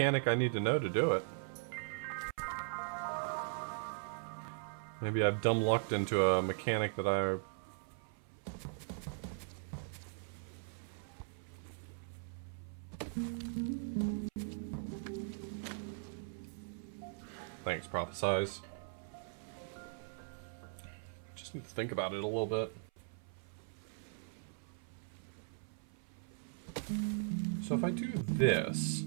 I need to know to do it. Maybe I've dumb lucked into a mechanic that I... Thanks, Prophesize. Just need to think about it a little bit. So if I do this,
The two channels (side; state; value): left; silent; 51 dB below the other